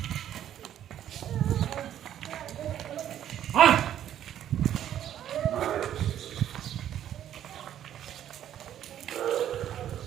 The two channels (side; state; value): left; quieter; 10.9 dB